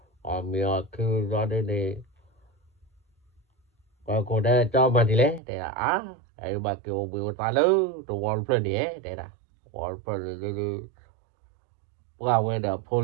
ở miệng kêu ra đi này và cô đây cho mà đi lấy để là ai bà kêu biểu ta lớn đồ wall plan đấy để là wall plan đi qua về đó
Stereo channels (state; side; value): drops out; left; at 5.4 s